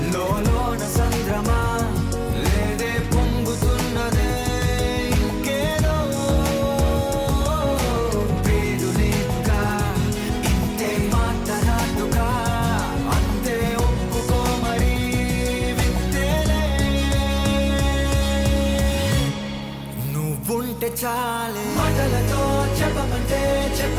లోన సంద్రమా, లేదే పొంగుతున్నదే ఇంకేదో. పేరు లేదుగా ఇంతే మాట్లాడుగా, అంతే ఒప్పుకో మరి వింతేలే. నువ్వుంటే చాలే, మాటలతో చెప్పమంటే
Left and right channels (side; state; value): both; identical; correlation 1.00